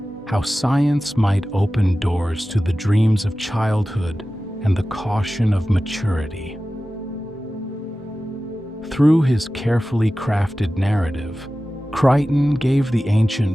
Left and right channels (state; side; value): normal; both; correlation 0.95